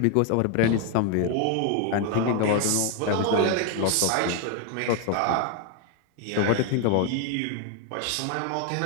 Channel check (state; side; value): different; both; correlation 0.01